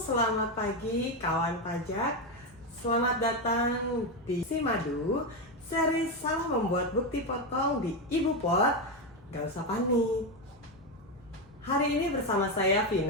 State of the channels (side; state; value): both; normal; correlation 0.10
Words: pagi kawan pajak. Selamat datang di Simadu, seri salah membuat bukti potong di Ibu Pot. Gak usah panik. Hari ini bersama saya